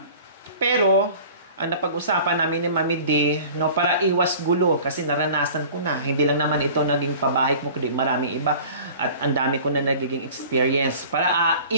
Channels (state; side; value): inverted; both; correlation -0.43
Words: pero ang napag-usapan namin ni Mami D, no, para iwas gulo, kasi naranasan ko na. Hindi lang naman ito naging pabahay mo, kundi maraming iba. At ang dami ko na nagiging experience. Para